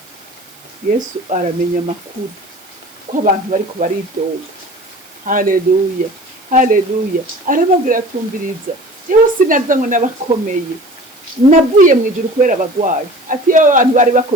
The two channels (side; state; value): right; noise; hiss, 26 dB below the sound